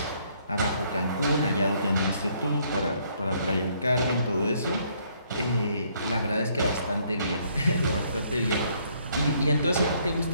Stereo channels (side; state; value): both; inverted; correlation -0.68